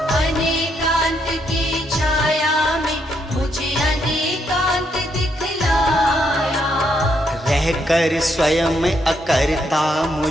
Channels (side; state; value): both; normal; correlation 0.76